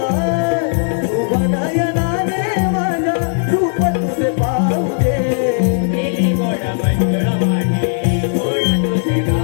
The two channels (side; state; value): right; silent; 69 dB below the other